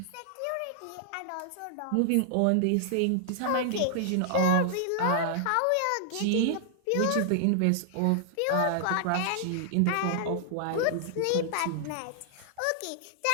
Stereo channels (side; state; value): both; different; correlation -0.01